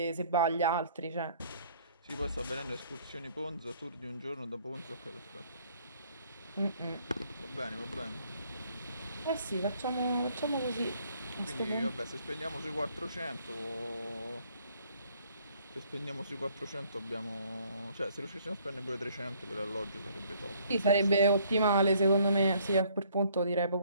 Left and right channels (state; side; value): inverted; both; correlation -0.62